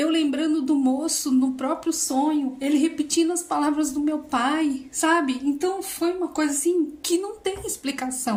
lembrando do moço no próprio sonho, ele repetindo as palavras do meu pai, sabe? Então foi uma coisa assim que não tem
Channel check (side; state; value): both; identical; correlation 1.00